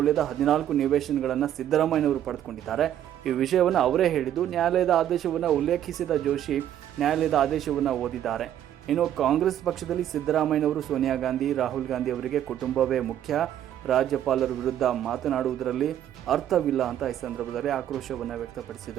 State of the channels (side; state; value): left; quieter; 11.0 dB